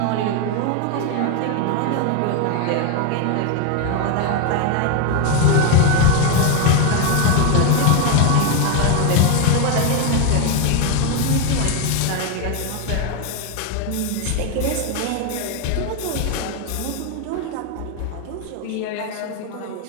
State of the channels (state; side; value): different; both; correlation 0.01